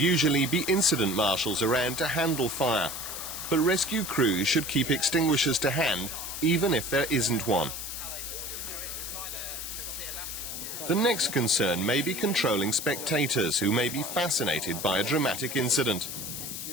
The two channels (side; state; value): left; noise; hiss, 7 dB below the sound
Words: be incident marshals around to handle fire, but rescue crews should keep extinguishers to hand even if there isn't one. The next concern may be controlling spectators who may be fascinated by a dramatic incident.